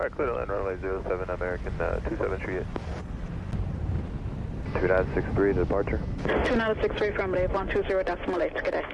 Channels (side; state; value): both; identical; correlation 1.00